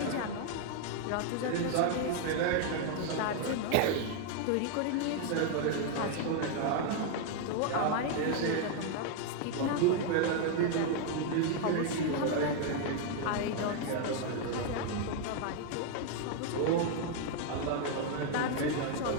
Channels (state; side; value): different; both; correlation 0.00